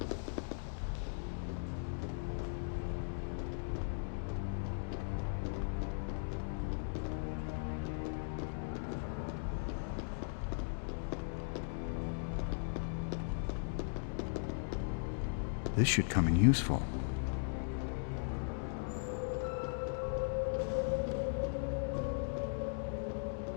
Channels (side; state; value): right; silent; digital silence